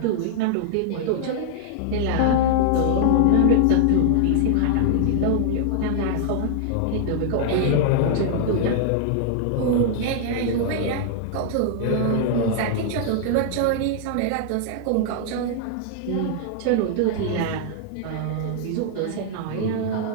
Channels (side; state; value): both; different; correlation -0.01